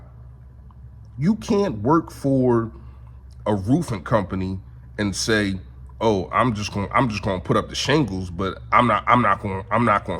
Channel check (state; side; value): identical; both; correlation 1.00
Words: You can't work for a roofing company and say, "Oh, I'm just going to put up the shingles, but I'm not going to